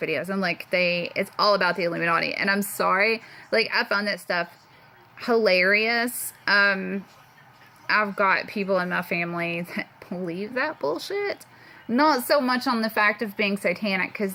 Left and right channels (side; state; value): both; identical; correlation 1.00